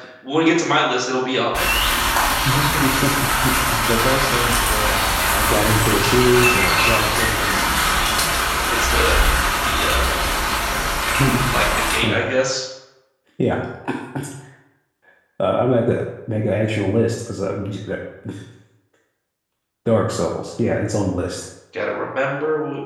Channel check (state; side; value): identical; both; correlation 1.00